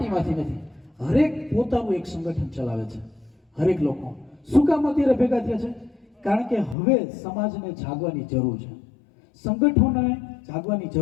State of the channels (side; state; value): right; drops out; at 6.8 s